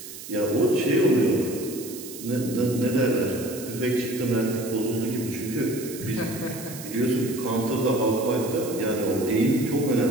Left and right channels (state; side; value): noise; right; hiss, 13 dB below the sound